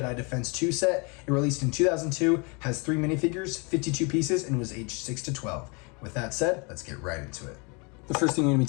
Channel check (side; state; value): right; quieter; 31.5 dB